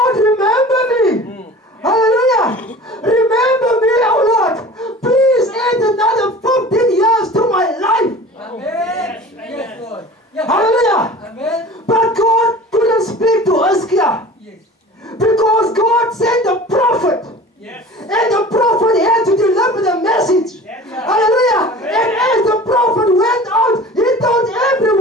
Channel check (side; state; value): both; normal; correlation 0.41